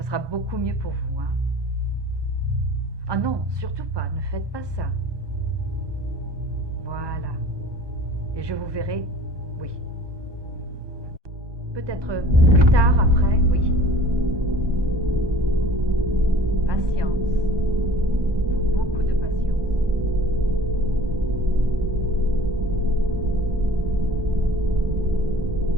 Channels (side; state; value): left; late; 1.2 ms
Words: beaucoup mieux pour vous, hein. Ah non, surtout pas, ne faites pas ça. Voilà. Et je vous verrai, oui. Peut-être plus tard, après, oui. Patience. Beaucoup de patience.